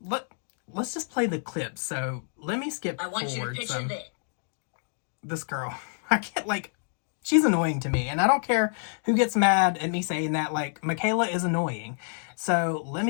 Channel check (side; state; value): right; silent; 60 dB below the other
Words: just play the clip. So let me skip forward. I want you to picture this girl. I can't, like, she's annoying to me, and I don't care who gets mad at me saying that. Like, Mikayla is annoying. So let